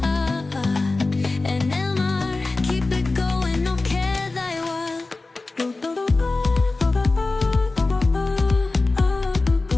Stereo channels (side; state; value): right; quieter; 3.4 dB